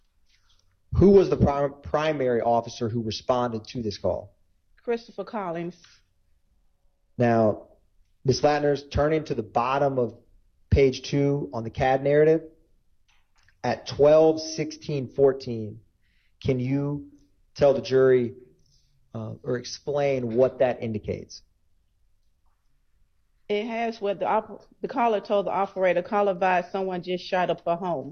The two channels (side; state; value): both; identical; correlation 1.00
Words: Who was the primary officer who responded to this call? Christopher Collins. Now, Ms. Ladners, turning to the bottom of page 2 on the CAD narrative, at 12:16:14, can you tell the jury or explain what that indicates? It has what the caller told the operator, caller advised someone just shot up a